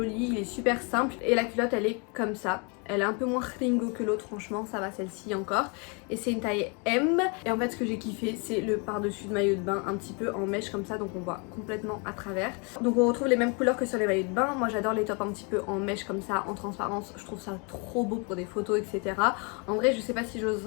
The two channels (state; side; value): quieter; right; 33.7 dB